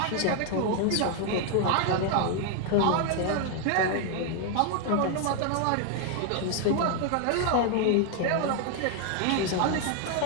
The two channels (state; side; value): different; both; correlation 0.00